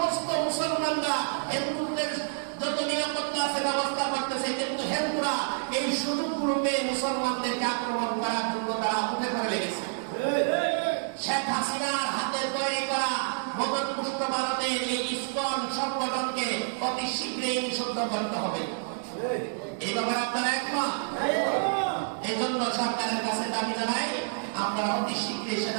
মুসলমানরা হিন্দুদের যত নিরাপত্তা আছে ব্যবস্থা করতেছে, কিন্তু হিন্দুরা এই সুযোগগুলো পেয়ে মুসলমানদেরকে আক্রমণ করার জন্য তারা উঠে পড়ে লেগেছে। শেখ হাসিনার হাতে তৈরি করা মদতপুষ্ট ভারতের এই ইসকন সংগঠনকে অতি শীঘ্রই নিষিদ্ধ করতে হবে। এই ব্যাপারে আপনারা একমত? এই জন্য সরকারের কাছে দাবি জানাই, আপনারা অতি শীঘ্রই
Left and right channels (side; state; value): left; silent; digital silence